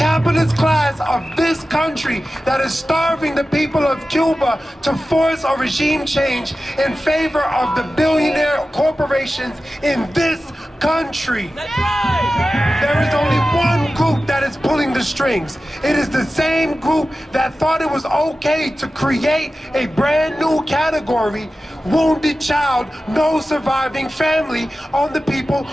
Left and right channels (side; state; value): both; normal; correlation 0.94